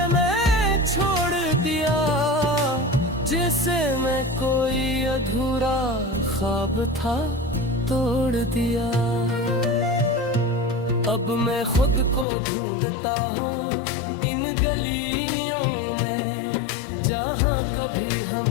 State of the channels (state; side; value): drops out; right; at 12.2 s